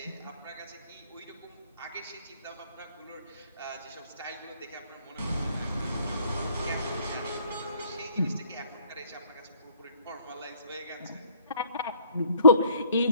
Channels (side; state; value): both; inverted; correlation -0.62